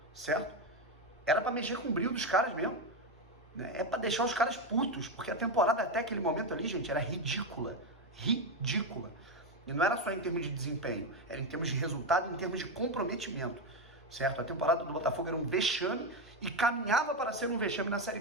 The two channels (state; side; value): normal; both; correlation 0.10